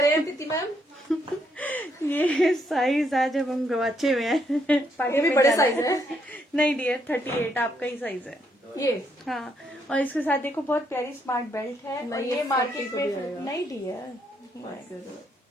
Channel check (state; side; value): normal; both; correlation 0.74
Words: हैं प्रीति मैम? ये साइज आज अब हम गवाचे में है। ये भी बड़े साइज है। नहीं डियर, 38 आपका ही साइज है ये। हाँ, और इसके साथ देखो बहुत प्यारी स्मार्ट बेल्ट है। और ये मार्केट में नहीं डियर,